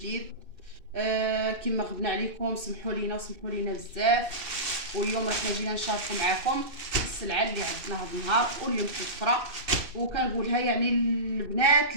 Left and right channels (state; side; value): late; left; 2.6 ms